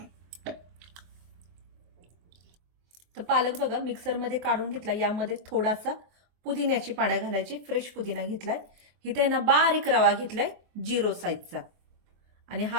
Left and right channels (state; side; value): late; left; 23 ms